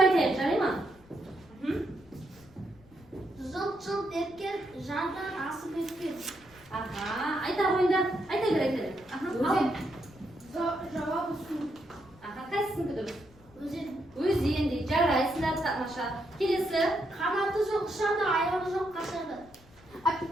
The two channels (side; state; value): left; noise; rumble, 26 dB below the sound